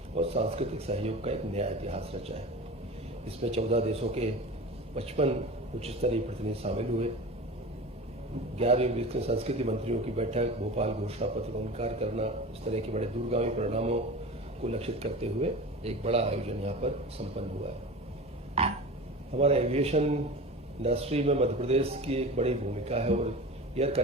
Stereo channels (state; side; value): normal; both; correlation 0.33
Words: और सांस्कृतिक सहयोग का एक नया इतिहास रचा है। इसमें 14 देशों के 55 उच्च स्तरीय प्रतिनिधि शामिल हुए। 11वीं ब्रिक्स संस्कृति मंत्रियों की बैठक, भोपाल घोषणा पत्र का अंगीकार करना, इस तरह के बड़े दूरगामी परिणामों को लक्षित करते हुए एक बड़ा आयोजन यहाँ पर संपन्न हुआ है। हमारा एविएशन इंडस्ट्री में मध्य प्रदेश की एक बड़ी भूमिका है और एयर